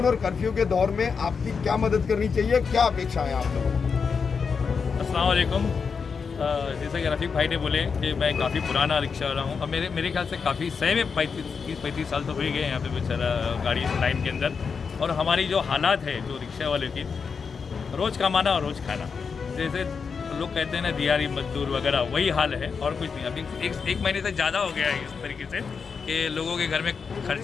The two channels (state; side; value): quieter; right; 5.7 dB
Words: और कर्फ्यू के दौर में आपकी क्या मदद करनी चाहिए, क्या अपेक्षा है आप लोगों को? अस्सलाम वालेकुम। जैसा कि रफ़ीक भाई ने बोले कि मैं काफ़ी पुराना रिक्शा वाला हूँ, और मेरे ख्याल से काफ़ी सही में 30-35 साल तो हो ही गए यहाँ पे बेचारा गाड़ी लाइन के अंदर। और हमारी जो हालात है जो रिक्शा वाले की, रोज़ कमाना और रोज़ खाना, जैसे लोग कहते हैं ना दिहाड़ी मजदूर वगैरह, वही हाल है और कुछ नहीं। अभी एक महीने से ज़्यादा हो गया है इस तरीके से कि लोगों के घर में